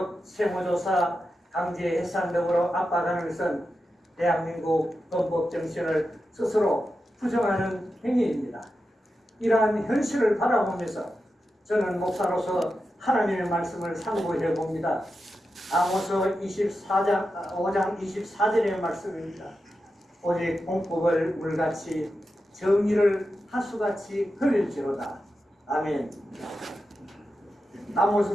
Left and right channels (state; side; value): normal; both; correlation 0.90